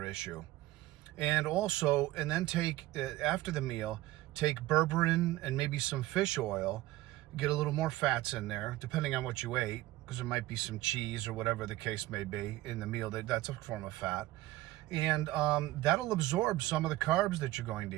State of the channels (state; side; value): quieter; left; 17.2 dB